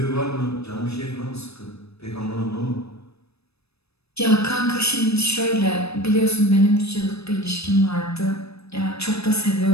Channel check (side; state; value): right; late; 0.78 ms